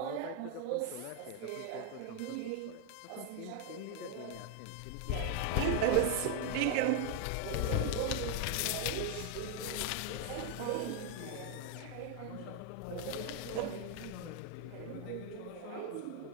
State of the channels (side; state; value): both; different; correlation 0.00